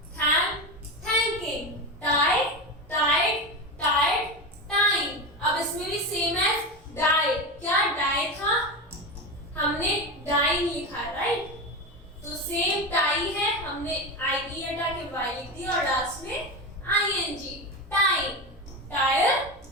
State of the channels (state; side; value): normal; both; correlation 0.20